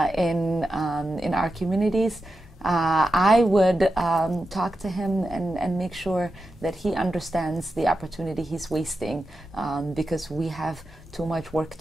our communities. I would talk to him and make sure that he understands the opportunity he's wasting, because we have too much work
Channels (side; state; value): both; normal; correlation 0.90